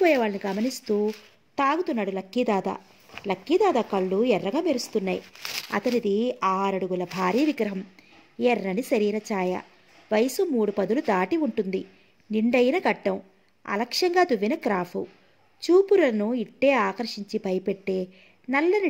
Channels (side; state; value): both; identical; correlation 1.00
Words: వాళ్ళని గమనిస్తూ తాగుతున్నాడు లక్కీదాదా. లక్కీదాదా కళ్ళు ఎర్రగా మెరుస్తున్నాయి. అతనిది 6 అడుగుల భారీ విగ్రహం. ఎర్రని శరీర ఛాయ. వయసు 3 పదులు దాటి ఉంటుంది. నిండైన గడ్డం. అలక్ష్యంగా దువ్విన క్రాఫు. చూపులను ఇట్టే ఆకర్షించి భయపెట్టే